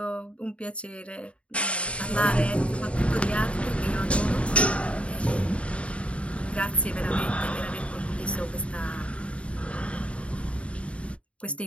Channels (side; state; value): right; late; 0.061 ms